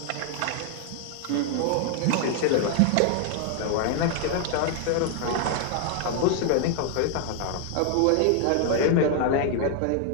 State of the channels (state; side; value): different; both; correlation 0.00